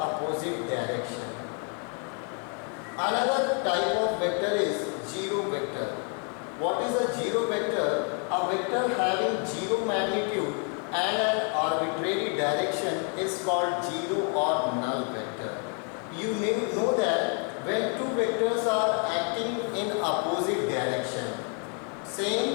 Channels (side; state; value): right; quieter; 39.5 dB